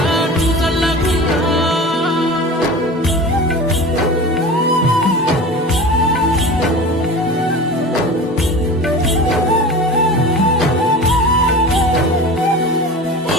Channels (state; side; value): normal; both; correlation 0.34